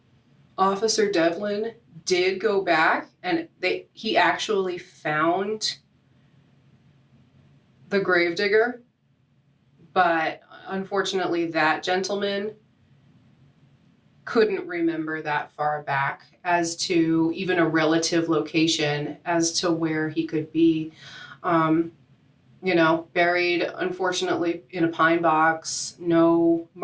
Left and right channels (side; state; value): both; identical; correlation 1.00